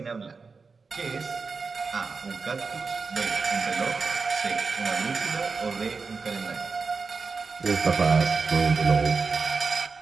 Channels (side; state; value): left; quieter; 4.6 dB